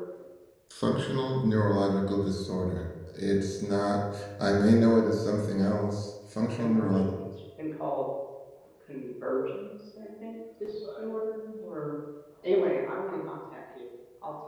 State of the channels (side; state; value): both; identical; correlation 1.00